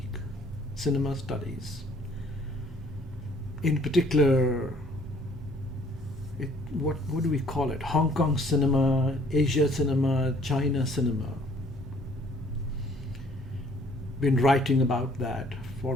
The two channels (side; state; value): both; normal; correlation 0.58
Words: cinema studies. In particular, what do we call it? Hong Kong cinema, Asia cinema, China cinema. Been writing about that for